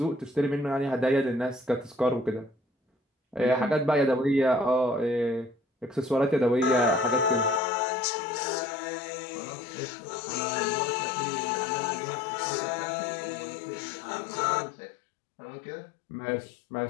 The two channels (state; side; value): drops out; right; at 7.6 s